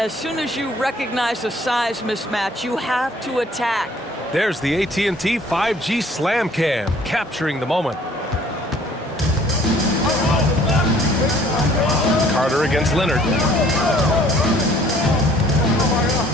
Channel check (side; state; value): both; normal; correlation 0.56